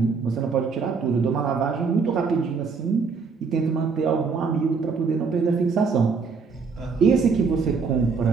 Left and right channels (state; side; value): quieter; left; 5.1 dB